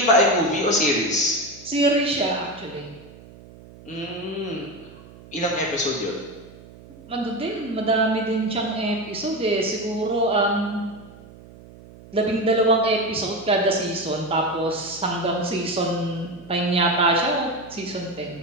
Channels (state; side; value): noise; right; hum, 20 dB below the sound